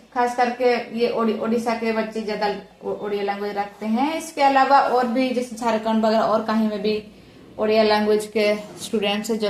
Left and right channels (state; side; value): identical; both; correlation 1.00